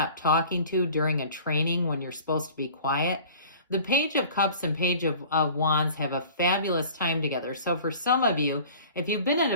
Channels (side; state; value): both; inverted; correlation -0.45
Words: talking to during a training when you're supposed to be quiet. The Page of Cups and Page of Wands have a fabulous time together. So for some of you, if you've been in